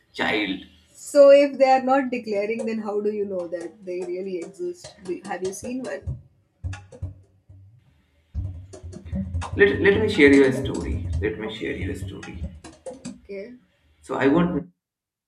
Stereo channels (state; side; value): identical; both; correlation 1.00